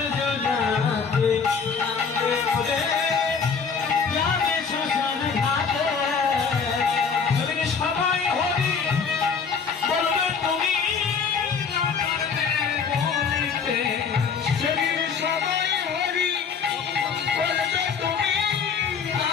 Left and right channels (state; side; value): quieter; right; 5.9 dB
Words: কাঁধে করে যাবে শ্মশান ঘাটে, সেদিন সবাই হরি বলবে তুমি, সেদিন সবাই হরি বলবে তুমি,